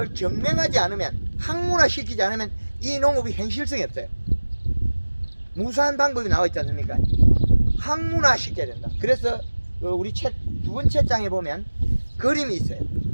증명하지 않으면 학문화 시키지 않으면 이 농업이 현실성이 없어요. 무수한 방법이 나와 있지 않습니까? 학문화 시켜야 된다. 그래서 우리 책 두 번째 장에 보면 그림이 있어요.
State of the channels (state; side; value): inverted; both; correlation -1.00